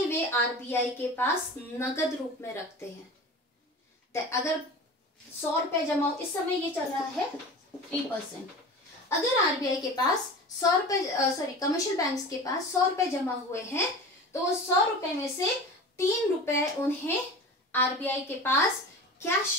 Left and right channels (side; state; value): both; normal; correlation 0.34